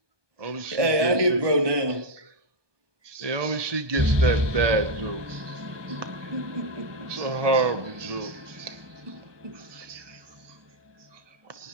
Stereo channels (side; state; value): left; late; 1.2 ms